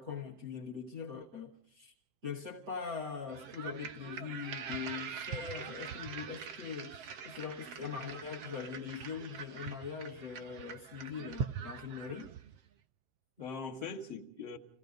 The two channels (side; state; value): left; late; 7.6 ms